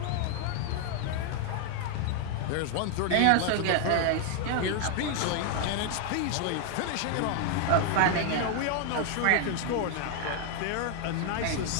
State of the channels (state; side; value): different; both; correlation 0.00